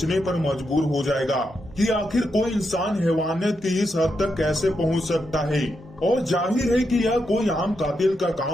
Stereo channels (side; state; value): both; normal; correlation 0.83